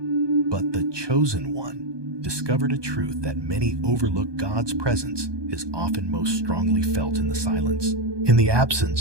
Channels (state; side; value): late; left; 1.2 ms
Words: But the chosen one discovered a truth that many overlook: God's presence is often most strongly felt in the silence. In the